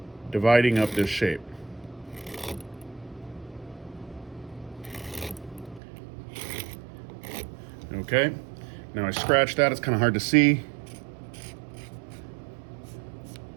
dividing up this shape. Okay, now I scratched that. It's kind of hard to see,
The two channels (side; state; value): left; drops out; at 5.8 s